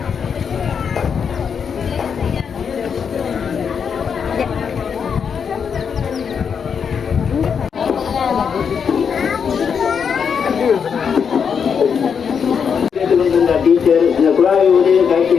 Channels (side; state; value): right; quieter; 6.7 dB